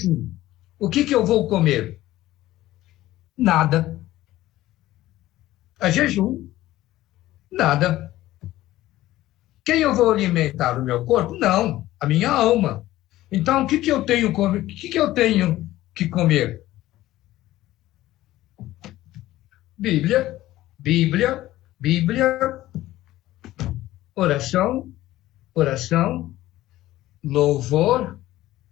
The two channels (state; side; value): quieter; right; 15.6 dB